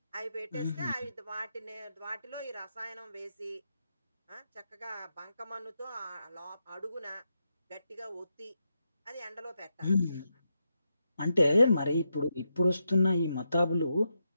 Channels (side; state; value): both; inverted; correlation -0.84